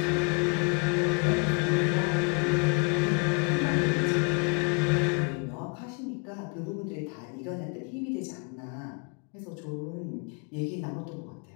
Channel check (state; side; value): quieter; right; 33.0 dB